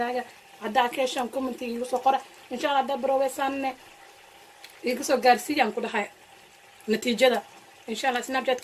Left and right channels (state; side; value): identical; both; correlation 1.00